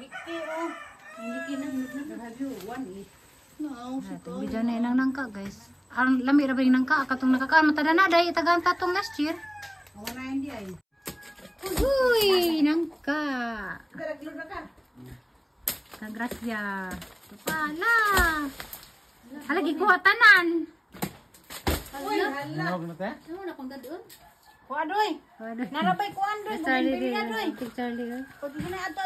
Video na inang nangka guys. Ang lami ra ba yung nangka katong nakakaan matada na dai tagang tatong last year. Wala hindi ay. Uy, nangka. Daraglo na ka. Kagrasya. Pala. Halagi ko tanan. Uy, hala. Ano na kung dadon? Kuadoy. Narabay kuandoy, Charlie bumili na doy. Charlie. Pag na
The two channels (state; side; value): identical; both; correlation 1.00